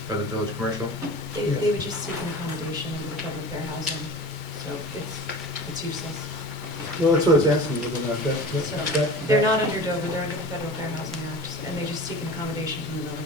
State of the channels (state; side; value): normal; both; correlation 0.37